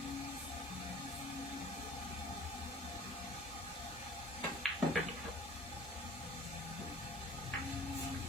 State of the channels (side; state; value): both; normal; correlation 0.46